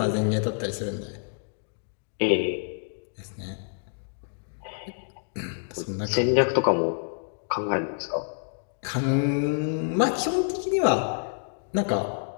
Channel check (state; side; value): silent; right; digital silence